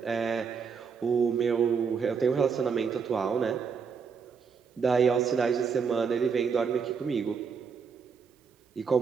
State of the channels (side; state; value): left; quieter; 5.9 dB